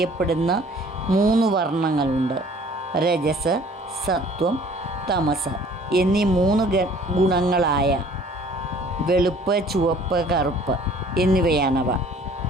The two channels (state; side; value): normal; both; correlation 0.53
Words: 3 വർണ്ണങ്ങളുണ്ട്. രജസ്, സത്വം, തമസ് എന്നീ 3 ഗുണങ്ങളായ വെളുപ്പ്, ചുവപ്പ്, കറുപ്പ് എന്നിവയാണവ.